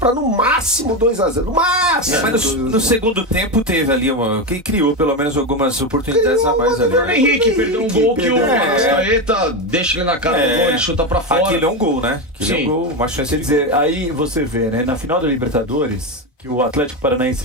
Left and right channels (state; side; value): normal; both; correlation 0.13